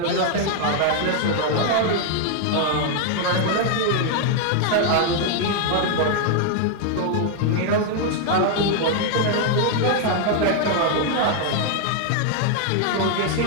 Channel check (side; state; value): both; different; correlation 0.00